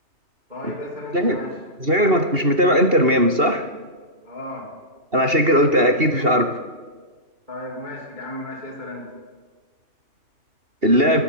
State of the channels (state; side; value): late; left; 2.8 ms